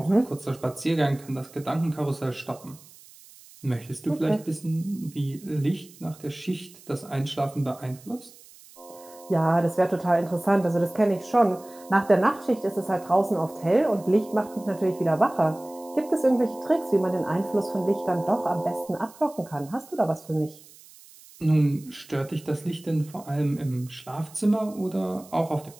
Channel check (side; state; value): right; noise; hiss, 23 dB below the sound